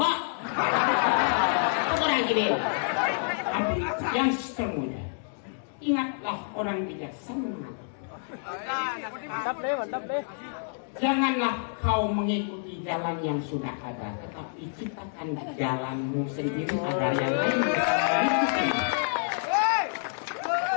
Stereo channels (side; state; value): right; silent; digital silence